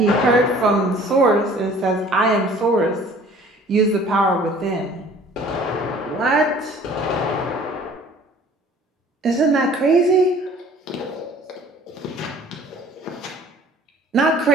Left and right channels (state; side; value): normal; both; correlation 0.51